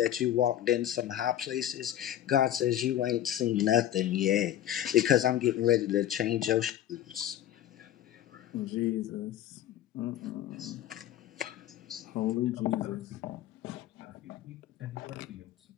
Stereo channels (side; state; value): right; quieter; 11.9 dB